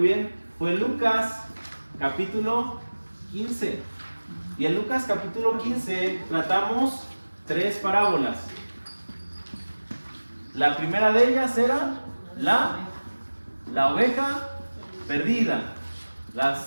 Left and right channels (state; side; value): inverted; both; correlation -1.00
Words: bien, fue Lucas capítulo 15. Y en Lucas capítulo 15 tratamos 3 parábolas. La primera de ellas era la oveja perdida. La